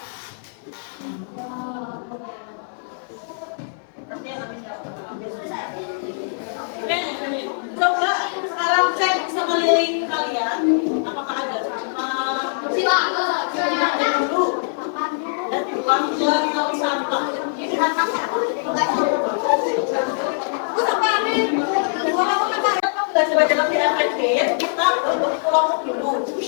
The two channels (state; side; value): silent; right; 64 dB below the other